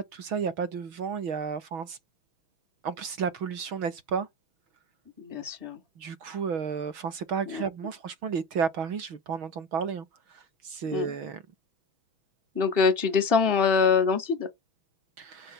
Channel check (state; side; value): late; left; 6.2 ms